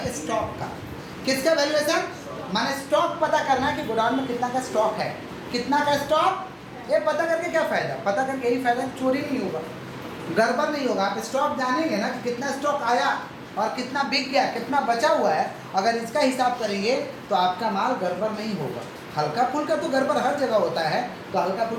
स्टॉक का। किसका वैल्यूएशन, माने स्टॉक पता करना है कि गोडाउन में कितना का स्टॉक है, कितना का स्टॉक। ये पता करके क्या फ़ायदा, पता करके यही फ़ायदा, चोरी नहीं होगा, गड़बड़ नहीं होगा। आप स्टॉक जानेंगे ना कि कितना स्टॉक आया और कितना बिक गया, कितना बचा हुआ है, अगर इसका हिसाब करेंगे तो आपका माल गड़बड़ नहीं होगा। हल्का फुल्का तो गड़बड़ हर जगह होता है, तो हल्का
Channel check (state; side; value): identical; both; correlation 1.00